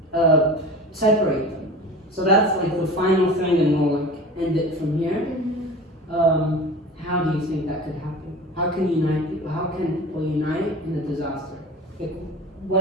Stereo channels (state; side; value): normal; both; correlation 0.36